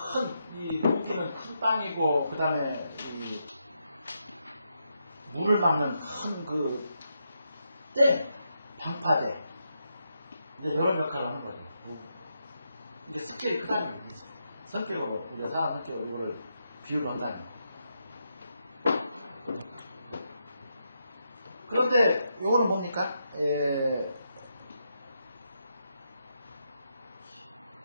이 무기는 여기는 큰 땅이고, 그 다음에 물을 막는 큰 방파제. 이제 이런 역할을 하는 거죠. 이게 스케일이 크다는 거죠. 성격으로, 우리가 사람 성격으로 이거를 비유를 한다는 거죠. 그런데 요거는 뭡니까?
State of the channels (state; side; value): inverted; both; correlation -0.82